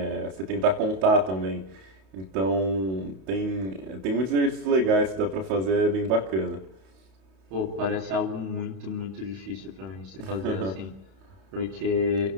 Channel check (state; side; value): late; left; 32 ms